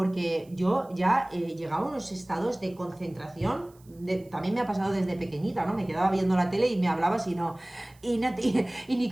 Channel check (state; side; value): noise; right; hiss, 30 dB below the sound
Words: yo ya llegaba a unos estados de concentración. También me ha pasado desde pequeñita, ¿no? Me quedaba viendo la tele y me hablabas y ni